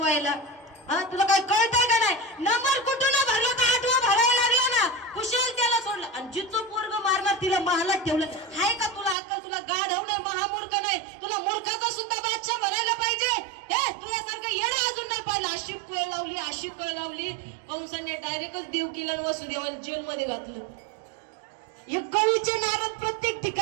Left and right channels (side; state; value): left; drops out; at 9.2 s